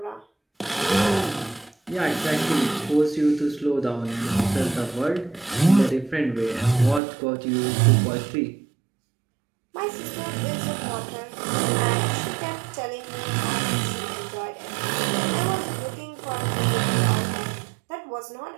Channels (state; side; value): drops out; left; at 7.0 s